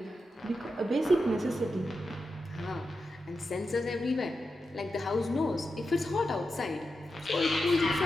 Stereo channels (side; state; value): both; normal; correlation 0.89